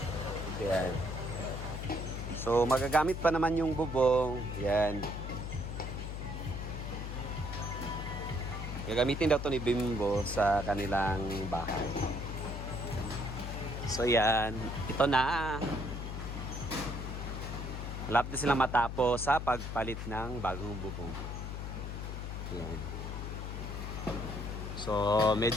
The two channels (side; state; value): left; noise; hum, 5 dB below the sound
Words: Yan. So magagamit pa naman yung bubong. Yan. Gagamitin daw to ni Bimbo sa kanilang bahay. So yan. Ito na. Malapit na silang matapos sa pagpalit ng bagong bubong. Yan. So